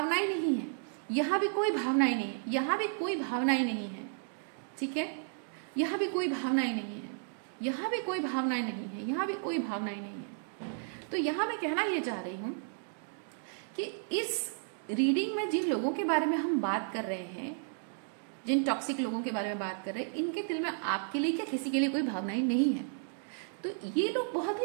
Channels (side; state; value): left; silent; digital silence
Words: नहीं है, यहाँ भी कोई भावनाएं नहीं है, यहाँ भी कोई भावनाएं नहीं है, ठीक है, यहाँ भी कोई भावनाएं नहीं है, यहाँ भी कोई भावनाएं नहीं है, यहाँ भी कोई भावनाएं नहीं है। तो यहाँ मैं कहना ये चाह रही हूं कि इस रीडिंग में जिन लोगों के बारे में हम बात कर रहे हैं, जिन टॉक्सिक लोगों के बारे में बात कर रहे हैं, इनके दिल में आपके लिए क्या किसी के लिए कोई भावनाएं नहीं है। तो ये लोग बहुत